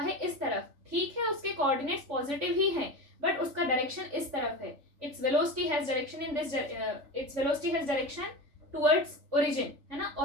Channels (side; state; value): left; late; 3.5 ms